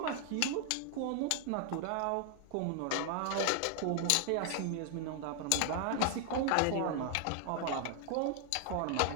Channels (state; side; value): different; both; correlation 0.00